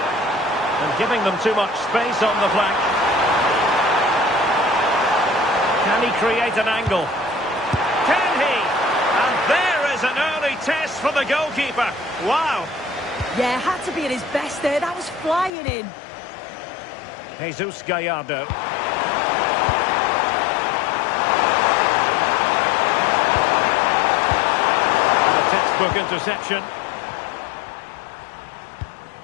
And giving them too much space on the flank. Can he create an angle? Can he? And there is an early test for the goalkeeper. Wow. Yeah, had to be at his best there. That was flying in. Jesus Gallardo. Textbook interception.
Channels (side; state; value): right; drops out; at 15.5 s